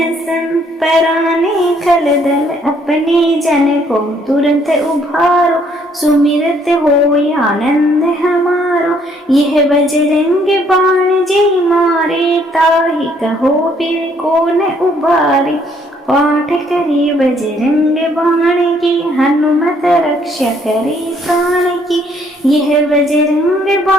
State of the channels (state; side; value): normal; both; correlation 0.66